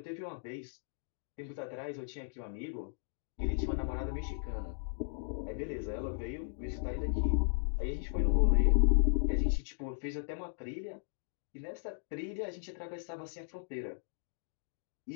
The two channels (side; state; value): right; silent; digital silence